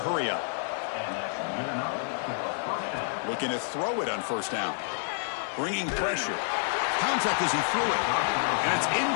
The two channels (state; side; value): silent; right; digital silence